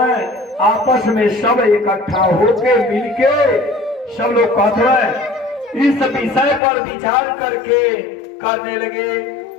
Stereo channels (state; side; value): drops out; right; at 6.6 s